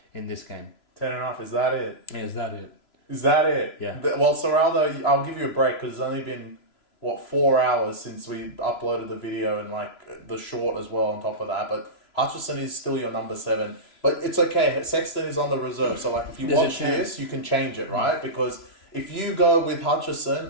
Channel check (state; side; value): late; right; 3.0 ms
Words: in this game? 10.5, is that it? Yeah, is that it? Is that it? Yeah. Well, Serraldo, I'll give you a break because it's only been, 4 hours since we uploaded the video and the short as well on top of that. But Hutchison is still your number 7. But it's okay. Sexton is on the reserve. So if you watch this, you can change it, right? Because if you go with